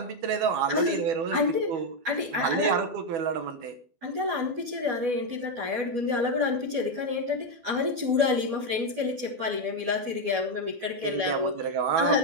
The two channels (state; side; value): late; left; 12 ms